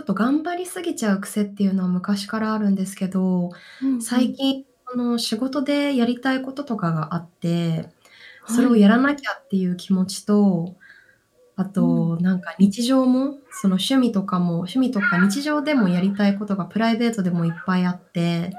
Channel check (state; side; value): identical; both; correlation 1.00